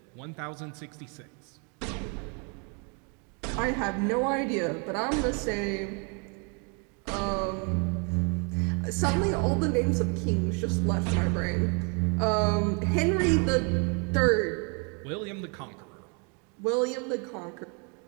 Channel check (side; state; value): left; quieter; 35.6 dB